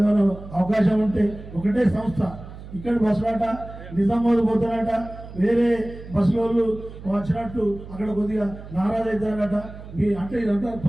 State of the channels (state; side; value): noise; right; hum, 14 dB below the sound